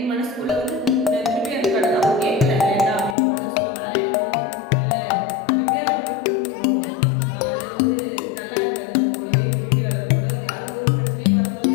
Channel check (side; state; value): right; drops out; at 3.2 s